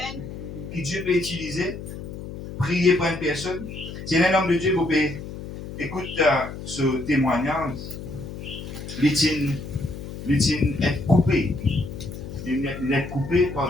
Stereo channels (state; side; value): noise; left; hum, 10 dB below the sound